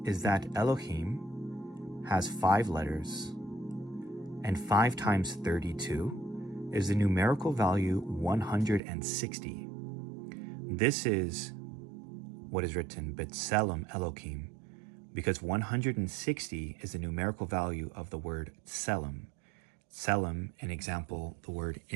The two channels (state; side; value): drops out; left; at 8.8 s